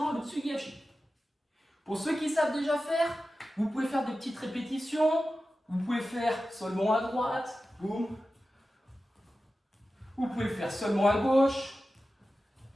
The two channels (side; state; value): both; normal; correlation 0.94